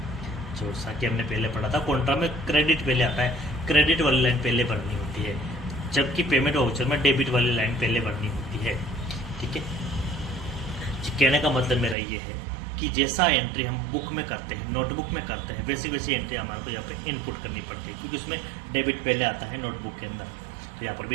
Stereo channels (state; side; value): drops out; left; at 12.0 s